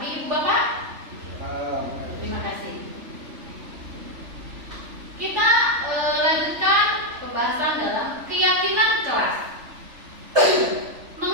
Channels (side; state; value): left; late; 3.4 ms